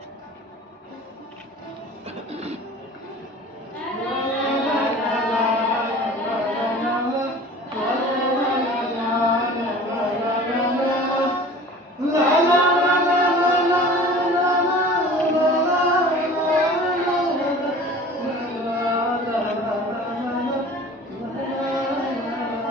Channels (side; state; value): both; normal; correlation 0.42